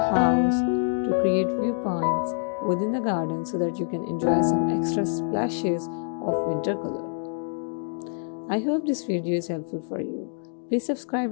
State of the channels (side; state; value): right; silent; digital silence